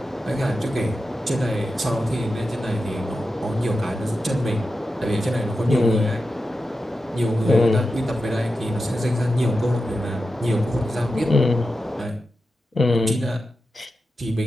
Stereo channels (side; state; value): both; normal; correlation 0.91